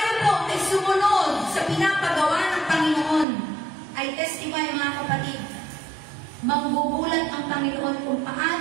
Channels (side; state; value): left; drops out; at 3.2 s